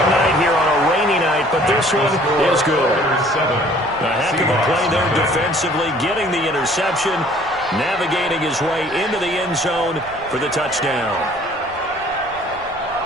night here on a rainy night, but this one is good. A heck of a play there defensively, getting the interception, navigating his way into the end zone for the touchdown.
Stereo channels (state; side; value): noise; right; rumble, 23 dB below the sound